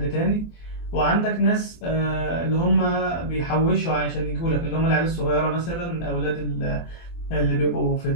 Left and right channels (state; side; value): late; right; 24 ms